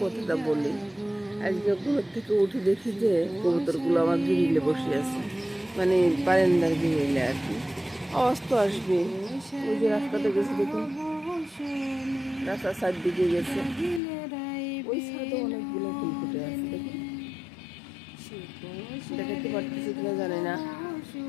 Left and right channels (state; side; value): drops out; right; at 14.0 s